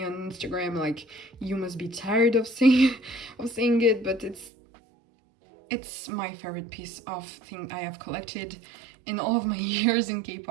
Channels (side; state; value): left; drops out; at 4.5 s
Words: on Instagram, like, you must be tired of saying it, but it's my favorite piece of thing I have collected in all of my years in